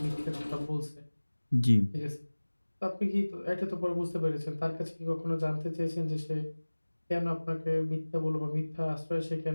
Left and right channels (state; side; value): inverted; both; correlation -1.00